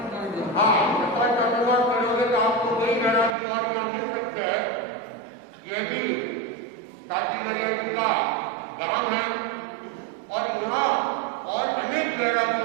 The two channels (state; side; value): drops out; left; at 3.4 s